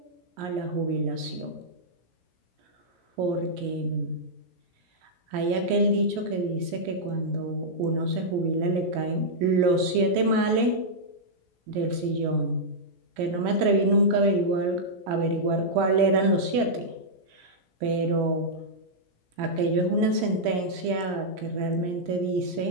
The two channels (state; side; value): late; left; 17 ms